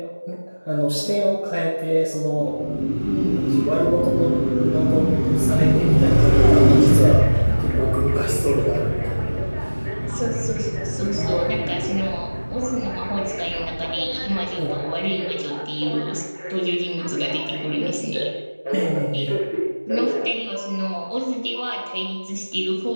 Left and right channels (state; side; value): inverted; both; correlation -1.00